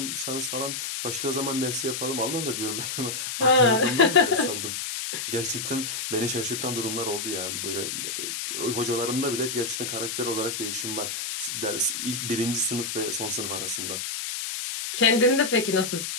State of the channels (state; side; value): noise; left; hiss, 4 dB below the sound